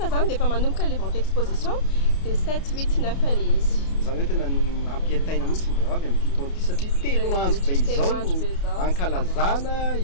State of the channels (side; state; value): right; late; 30 ms